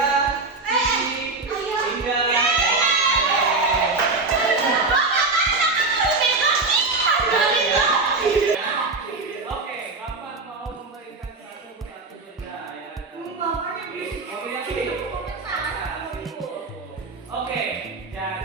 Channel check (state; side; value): quieter; left; 3.7 dB